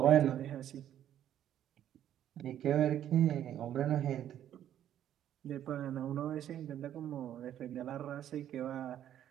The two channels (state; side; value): quieter; left; 10.9 dB